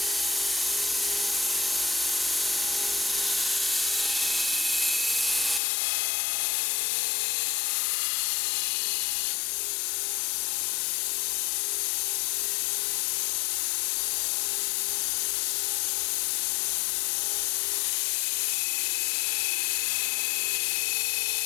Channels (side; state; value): right; drops out; at 5.6 s